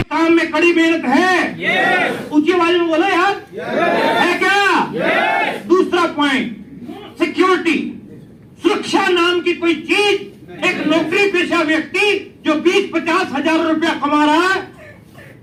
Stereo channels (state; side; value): identical; both; correlation 1.00